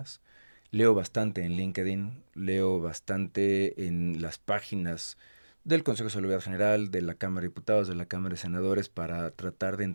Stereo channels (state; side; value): inverted; both; correlation -1.00